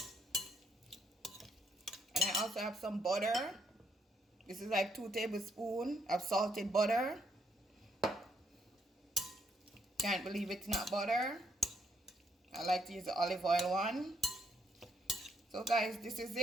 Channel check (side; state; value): both; normal; correlation 0.73